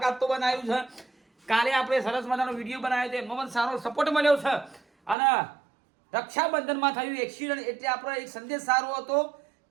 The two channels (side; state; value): left; drops out; at 5.2 s